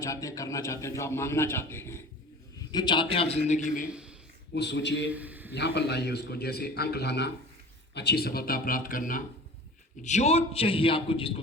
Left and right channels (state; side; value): normal; both; correlation 0.39